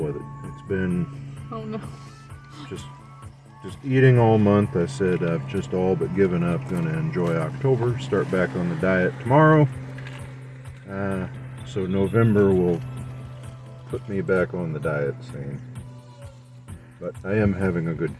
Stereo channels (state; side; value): identical; both; correlation 1.00